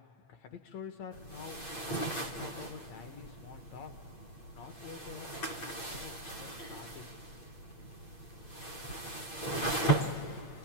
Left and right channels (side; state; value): right; late; 8.8 ms